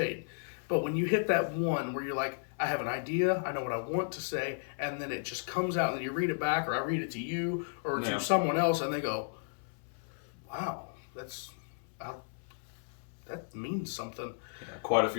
But when you hit that one where you're like, I have an idea, I know what I want to say, and then it just comes out, and then you read it back, or I read it to you, or to someone else, and they go, wow, that means something. Yeah, quite a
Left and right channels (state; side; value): silent; right; 55 dB below the other